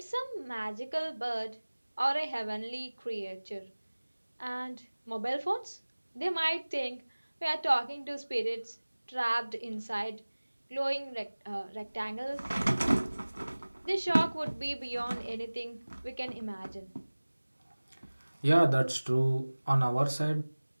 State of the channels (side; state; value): both; inverted; correlation -1.00